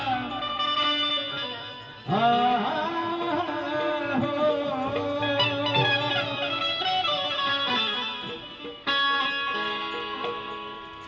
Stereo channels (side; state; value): both; identical; correlation 1.00